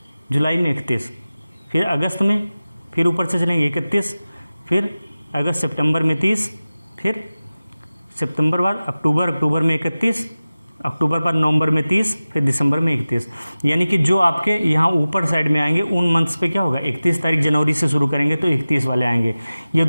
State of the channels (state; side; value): inverted; both; correlation -0.97